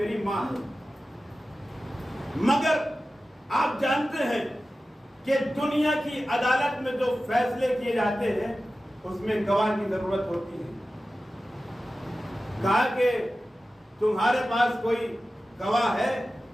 ماں ہے۔ مگر آپ جانتے ہیں کہ دنیا کی عدالت میں جو فیصلے کیے جاتے ہیں اس میں گواہ کی ضرورت ہوتی ہے۔ کہا کہ تمہارے پاس کوئی گواہ ہے؟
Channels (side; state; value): both; normal; correlation 0.94